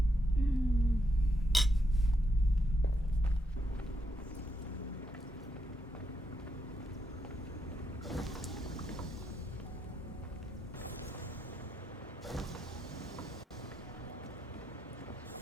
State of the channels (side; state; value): both; normal; correlation 0.82